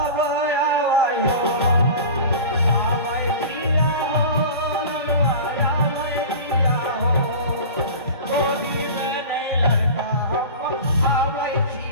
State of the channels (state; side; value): inverted; both; correlation -0.34